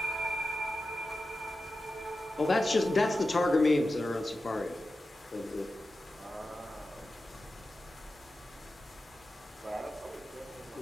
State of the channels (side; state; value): both; normal; correlation 0.92